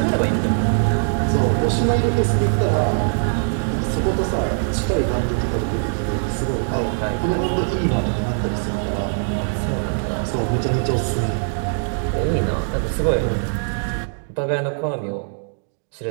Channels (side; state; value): left; silent; 63 dB below the other